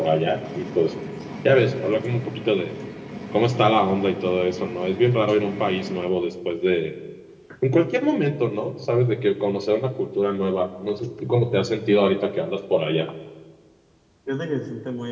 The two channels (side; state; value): both; identical; correlation 1.00